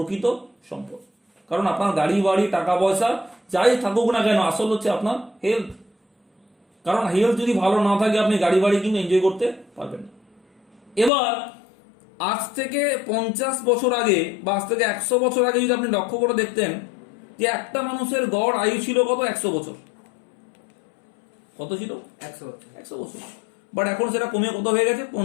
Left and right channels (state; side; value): drops out; right; at 11.1 s